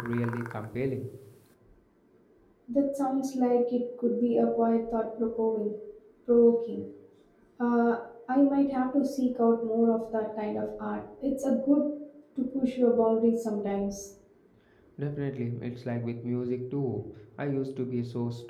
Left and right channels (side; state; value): both; identical; correlation 1.00